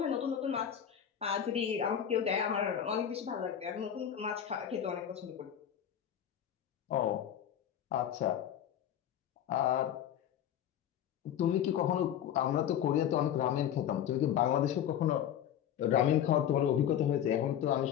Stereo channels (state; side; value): quieter; right; 9.9 dB